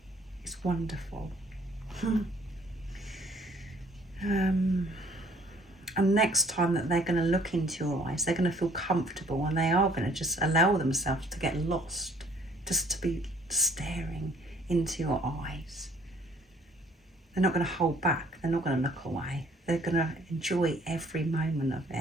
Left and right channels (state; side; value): normal; both; correlation 0.59